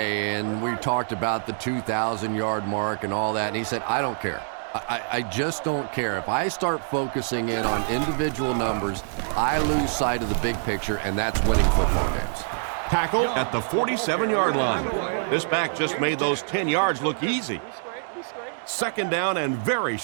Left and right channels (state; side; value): silent; left; digital silence